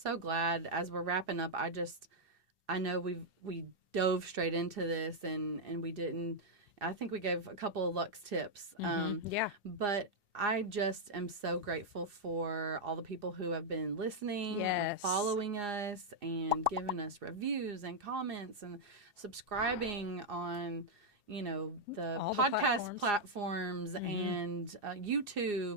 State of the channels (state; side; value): late; left; 2.7 ms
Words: so glad as we're wrapping up. I know we dove straight into this and we didn't. I think we gave a couple of Lux tips. But I just am so grateful for all the people who have been listening and following us and giving us reviews and comments and subscribing on, the all podcast the platforms and